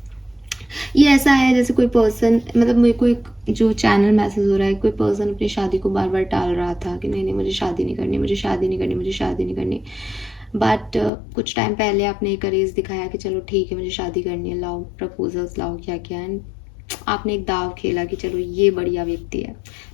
ये ऐसा है जैसे कोई पर्सन, मतलब मेरे को एक जो चैनल मैसेज हो रहा है, कोई पर्सन अपनी शादी को बार बार टाल रहा था कि नहीं नहीं मुझे शादी नहीं करनी, मुझे शादी नहीं करनी, मुझे शादी नहीं करनी। बट कुछ टाइम पहले आपने एक करेज दिखाया कि चलो ठीक है मुझे शादी करनी है, लाओ प्रपोजल्स लाओ, क्या क्या, एंड आपने एक दाव खेला कि चलो ये बढ़िया व्यक्ति है,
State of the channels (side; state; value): right; drops out; at 11.1 s